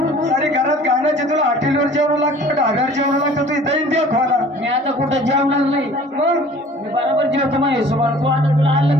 सारी घरात गाण्याचे तुला हॉटेलवर जेवण लागतं ढाब्यावर जेवण लागतं तू इथं दे खोला मी आता कुठं जेवणार नाही मग मी बरोबर जेवतो मग हिशोबाला तू आता तुला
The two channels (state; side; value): normal; both; correlation 0.49